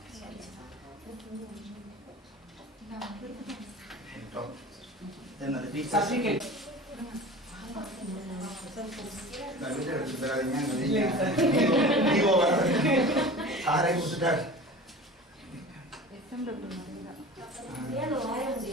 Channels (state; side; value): normal; both; correlation 0.37